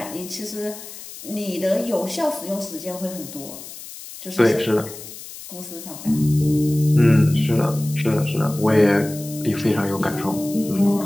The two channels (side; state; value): left; noise; hiss, 14 dB below the sound